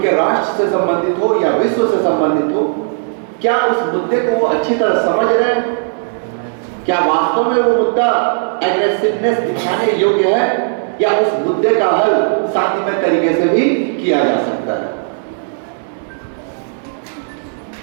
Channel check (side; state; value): left; silent; digital silence